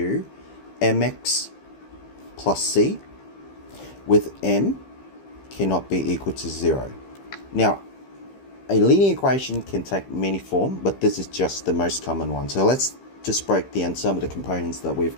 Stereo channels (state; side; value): late; right; 15 ms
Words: mx plus c, with m cannot be equal to 0. Now, a linear equation can take many forms, but this is just the most common one. So let's just break down some of the components that we've